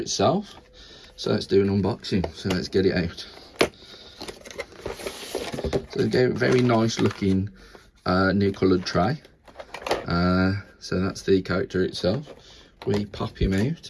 So let's do an unboxing. So let's get it out. So again, very nice looking new coloured tray. So that's the character itself. We pop him out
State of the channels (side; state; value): both; identical; correlation 1.00